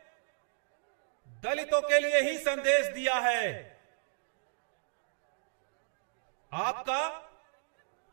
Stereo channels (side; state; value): left; silent; digital silence